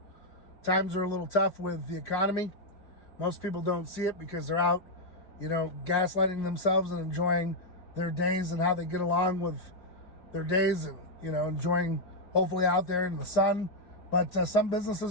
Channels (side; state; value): right; late; 4.8 ms